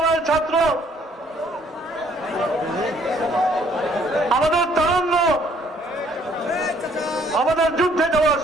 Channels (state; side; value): normal; both; correlation 0.63